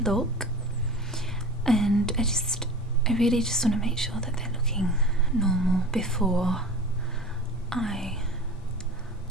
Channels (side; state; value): both; normal; correlation 0.36